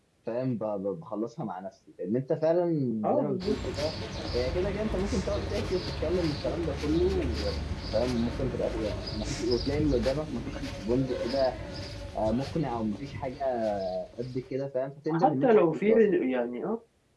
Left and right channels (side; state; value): both; identical; correlation 1.00